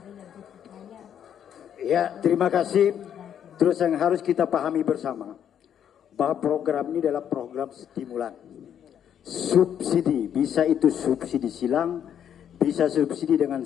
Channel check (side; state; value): right; quieter; 9.2 dB